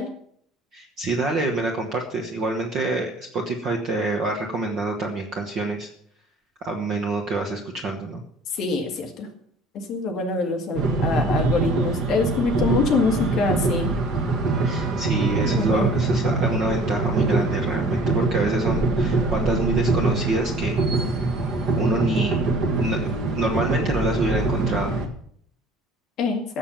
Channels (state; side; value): normal; both; correlation 0.49